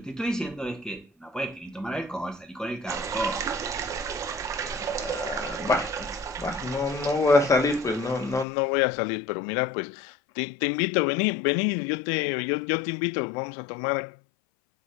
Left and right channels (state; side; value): drops out; right; at 8.5 s